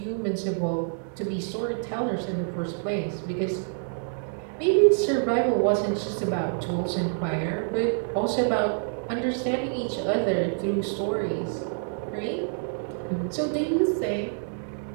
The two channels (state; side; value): silent; left; digital silence